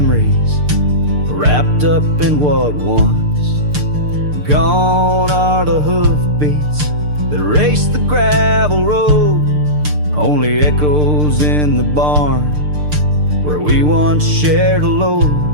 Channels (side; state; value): left; late; 6.7 ms